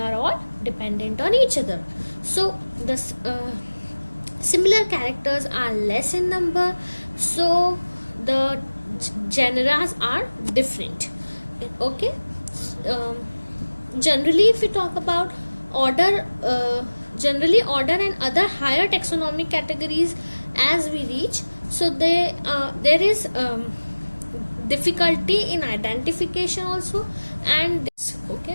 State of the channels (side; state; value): both; inverted; correlation -1.00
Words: all dependent on each other. So the similar characters are less in number, so the genera are different. Okay. Generally, if we talk about order, generally order and other higher taxonomic categories as we reach, so there is difficulty in identification also, and this, okay,